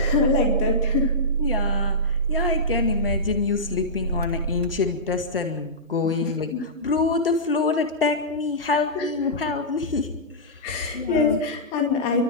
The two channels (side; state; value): both; normal; correlation -0.15